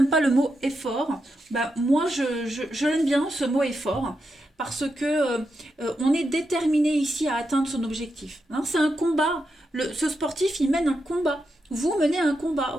pas le mot effort. Bah, moi, je l'aime bien ce mot effort parce que on est déterminé ici à atteindre son objectif. Hein, c'est un combat. Ce sportif, il mène un combat. Vous menez un combat.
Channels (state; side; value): normal; both; correlation 0.85